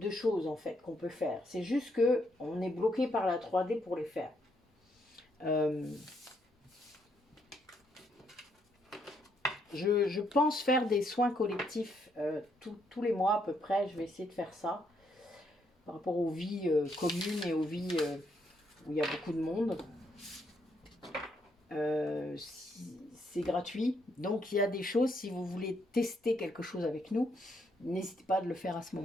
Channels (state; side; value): normal; both; correlation 0.74